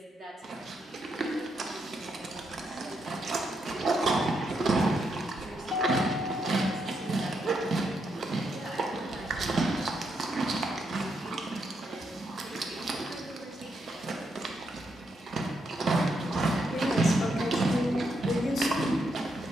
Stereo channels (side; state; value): both; normal; correlation 0.80